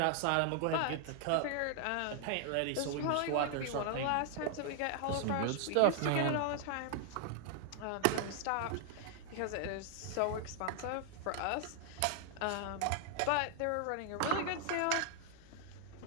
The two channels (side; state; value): both; different; correlation 0.00